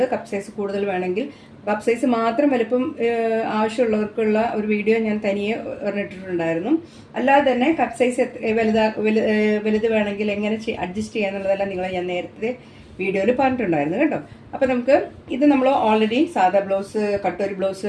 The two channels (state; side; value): identical; both; correlation 1.00